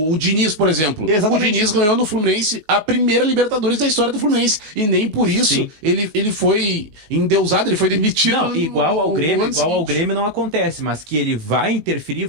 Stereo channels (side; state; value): left; late; 19 ms